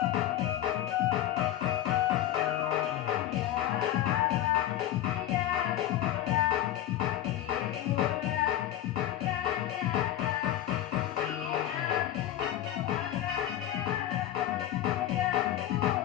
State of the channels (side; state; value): right; quieter; 12.4 dB